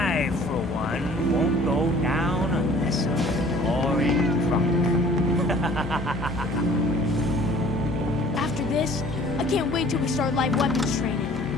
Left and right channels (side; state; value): both; normal; correlation 0.51